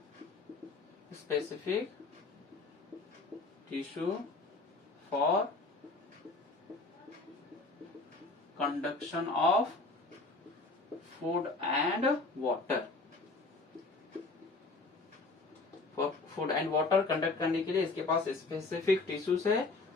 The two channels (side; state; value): right; quieter; 3.5 dB